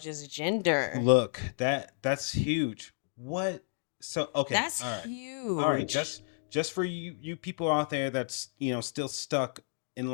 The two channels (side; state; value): right; silent; digital silence